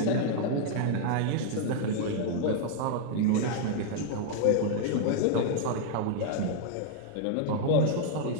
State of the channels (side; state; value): both; different; correlation 0.00